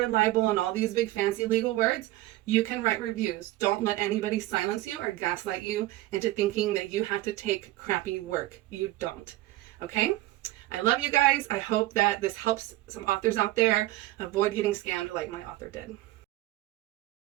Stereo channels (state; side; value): quieter; left; 16.9 dB